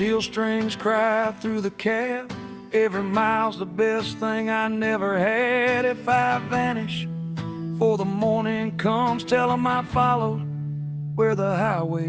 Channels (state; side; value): identical; both; correlation 1.00